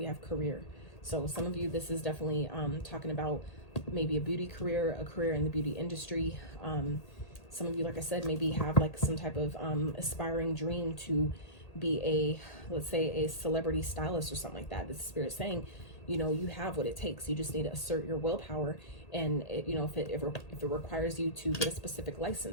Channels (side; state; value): right; late; 1.8 ms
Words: have career. So some of you, this is definitely talking about maybe a beauty career, a career in the beauty industry. Some of you, like I said, maybe have like some type of aspiring dream to be a, let's say, a celebrity stylist or something like that. The Spirit saying, you know, you have what it takes. You just need to assert your willpower. And it, you know, if it requires you to get a specific